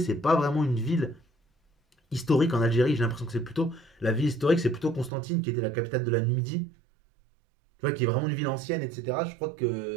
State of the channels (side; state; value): left; drops out; at 5.1 s